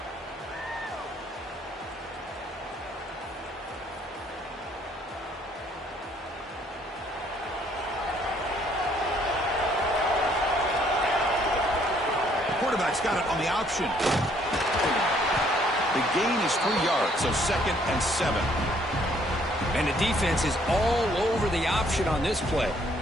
Quarterback's got it on the option. The gain is 3 yards, so 2nd and 7. And the defense is all over the option on this play.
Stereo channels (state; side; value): normal; both; correlation 0.65